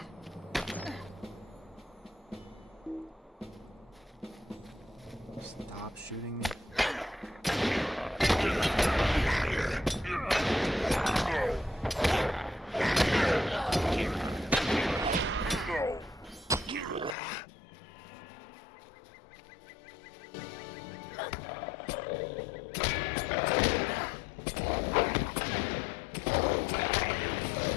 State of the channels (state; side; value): drops out; right; at 17.2 s